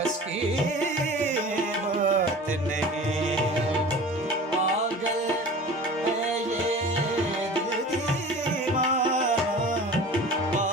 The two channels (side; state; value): both; normal; correlation 0.39